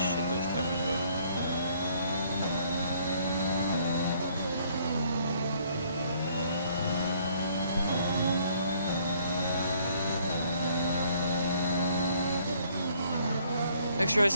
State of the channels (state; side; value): inverted; both; correlation -0.64